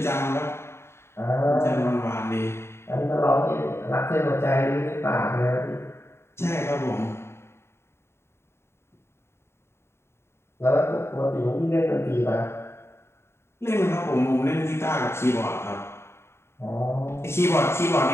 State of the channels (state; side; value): late; right; 0.12 ms